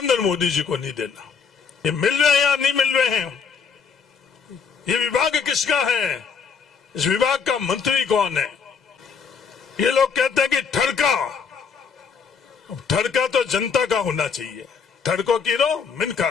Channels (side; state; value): right; quieter; 6.1 dB